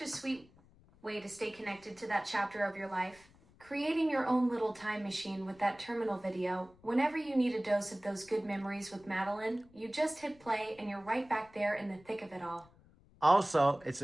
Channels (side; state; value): left; noise; rumble, 27 dB below the sound